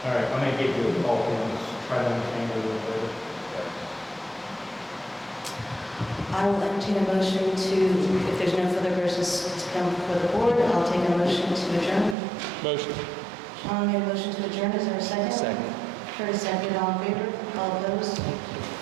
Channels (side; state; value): left; drops out; at 12.2 s